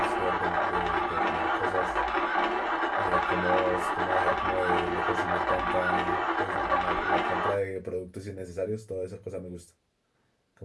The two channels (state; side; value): identical; both; correlation 1.00